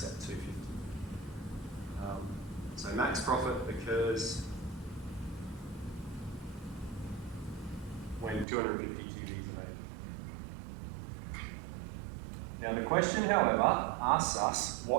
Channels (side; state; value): left; drops out; at 8.5 s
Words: at 250. So max profit occurs when 250 TVs are made. Now the question, however, asks us,